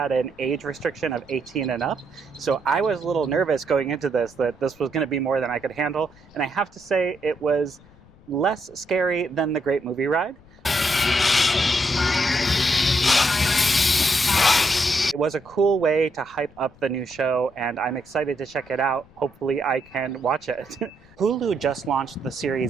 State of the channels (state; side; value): noise; left; rumble, 26 dB below the sound